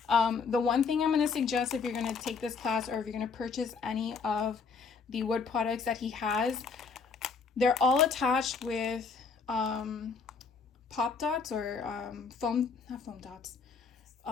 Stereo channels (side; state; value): right; quieter; 5.1 dB